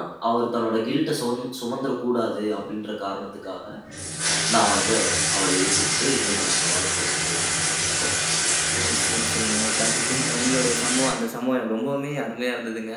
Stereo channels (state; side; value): identical; both; correlation 1.00